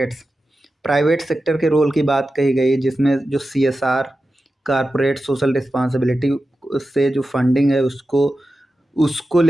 Private sector के रोल की बात कही गई, जिसमें जो CSR कॉरपोरेट सोशल रिस्पॉन्सिबिलिटी से जो फंडिंग है उसको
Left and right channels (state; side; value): normal; both; correlation 0.92